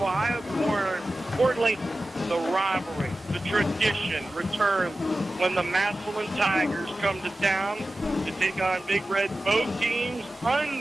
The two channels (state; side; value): normal; both; correlation 0.95